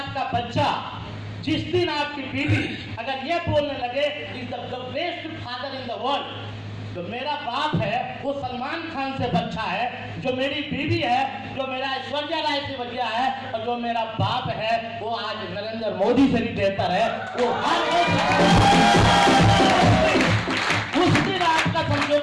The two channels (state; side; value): identical; both; correlation 1.00